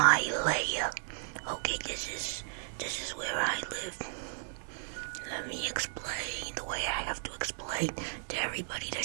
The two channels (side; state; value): left; silent; digital silence